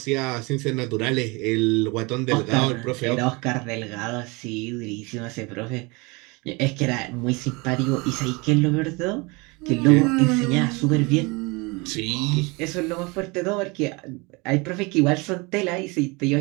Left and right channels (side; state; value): left; quieter; 26.9 dB